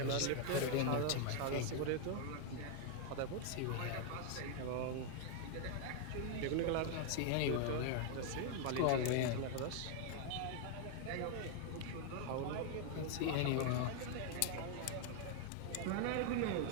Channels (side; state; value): both; different; correlation 0.00